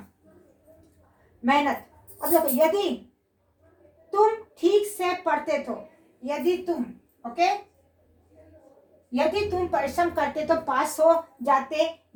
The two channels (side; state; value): both; identical; correlation 1.00